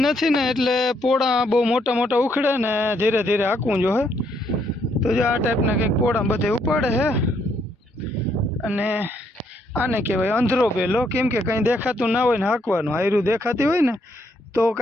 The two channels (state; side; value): normal; both; correlation 0.72